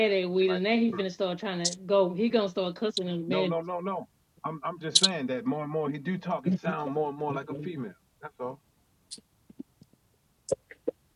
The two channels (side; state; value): both; identical; correlation 1.00